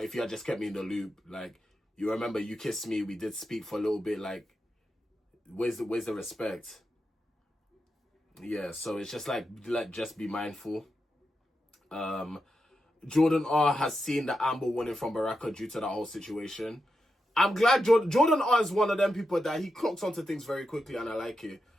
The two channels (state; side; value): normal; both; correlation 0.88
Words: you had just kept me in the loop, like, you remember you kissed me, we did speak for a little bit, like, where's the respect? Yeah, so it's just like just be mindful. Jordan R has seen the Amber warning from Baraka due to that whole situation. I'm glad Jordan R is one of them people that he clocks onto things very quickly, and I like it.